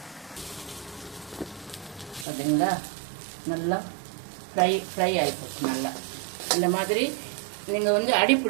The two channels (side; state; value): left; drops out; at 2.2 s